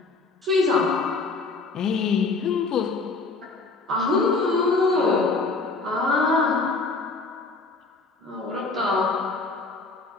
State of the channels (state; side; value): quieter; right; 3.8 dB